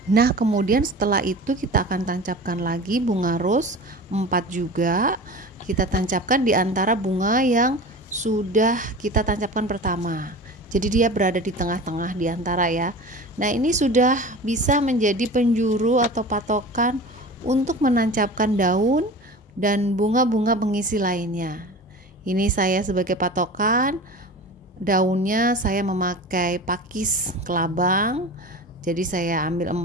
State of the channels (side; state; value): both; normal; correlation 0.35